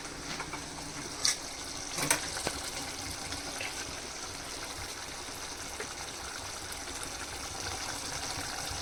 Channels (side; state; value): both; identical; correlation 1.00